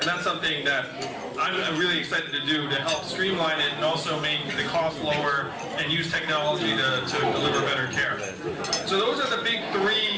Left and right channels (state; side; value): identical; both; correlation 1.00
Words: that's something that I'm really excited to do, to help streamline it and also make the cost lower and use technology to deliver better care. So those are the big